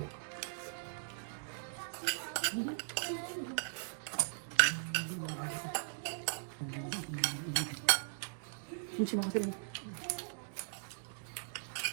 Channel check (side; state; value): left; silent; digital silence